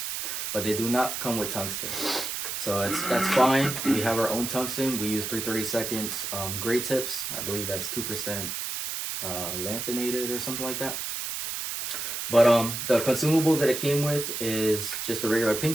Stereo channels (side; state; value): right; noise; hiss, 4 dB below the sound